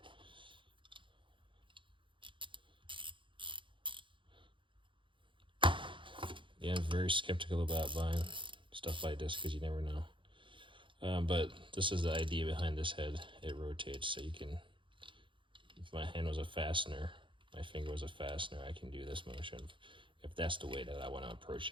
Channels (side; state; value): left; late; 0.24 ms